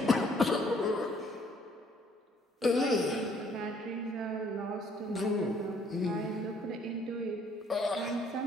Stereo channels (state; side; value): normal; both; correlation 0.63